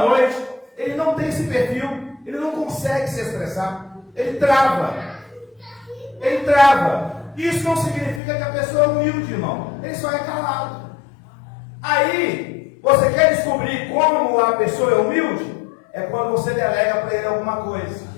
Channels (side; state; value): right; drops out; at 8.2 s